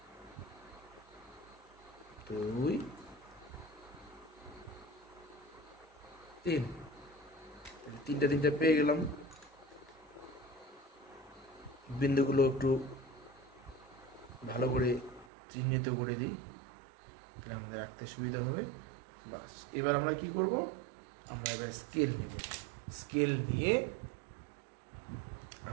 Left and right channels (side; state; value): left; drops out; at 15.2 s